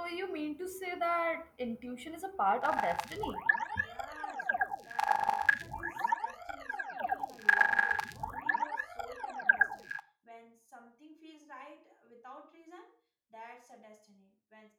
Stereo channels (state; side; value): identical; both; correlation 1.00